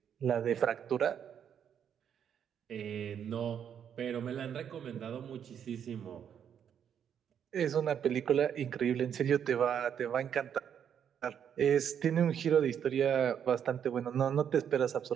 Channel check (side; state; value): left; quieter; 8.5 dB